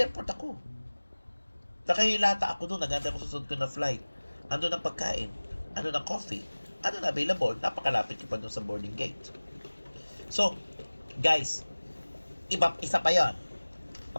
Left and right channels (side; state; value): both; inverted; correlation -1.00